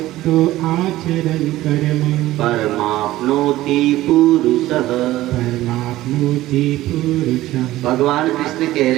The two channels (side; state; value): left; quieter; 16.0 dB